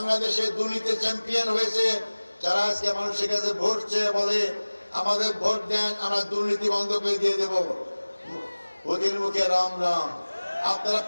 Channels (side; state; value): both; inverted; correlation -1.00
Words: দুর্নীতি চ্যাম্পিয়ন হয়েছে যারা আজকে মানুষের কাছে ভোট চেয়ে বলে আমাদের ভোট দেন, আমরা দুর্নীতি বন্ধ করে দিয়ে দেব। ওদের মুখে রাম রাম। আপনারা